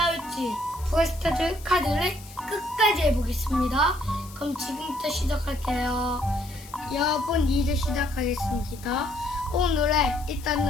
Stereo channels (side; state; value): left; noise; hiss, 19 dB below the sound